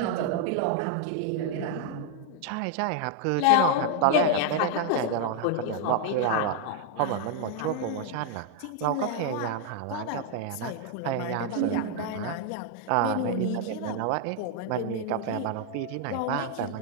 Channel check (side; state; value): both; different; correlation 0.00